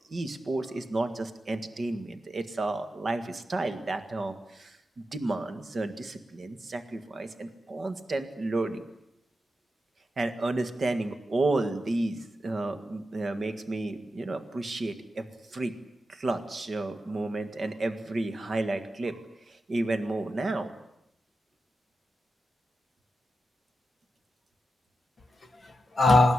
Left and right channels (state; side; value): normal; both; correlation 0.89